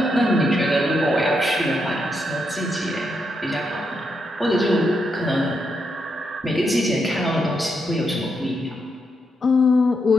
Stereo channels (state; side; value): normal; both; correlation 0.81